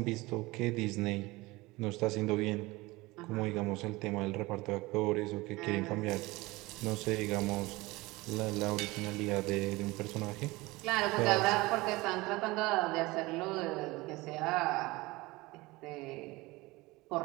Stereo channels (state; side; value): quieter; left; 21.6 dB